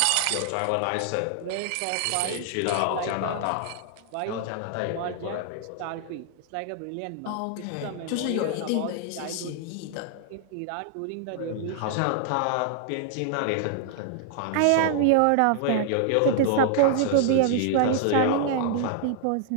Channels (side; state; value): both; different; correlation -0.01